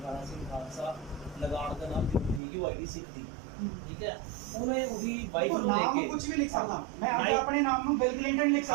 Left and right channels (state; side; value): drops out; left; at 2.4 s